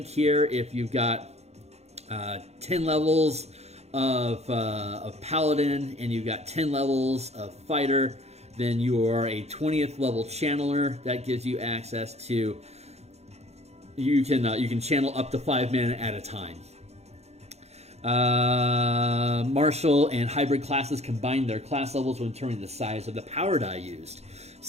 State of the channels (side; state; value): left; late; 0.31 ms